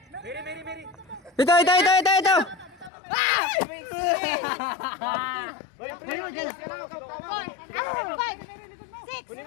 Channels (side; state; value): right; drops out; at 2.9 s